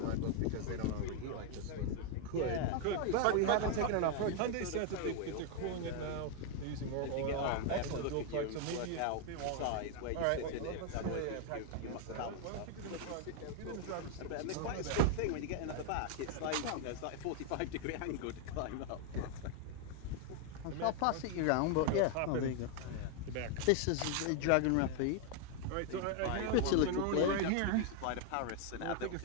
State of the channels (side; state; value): both; different; correlation 0.00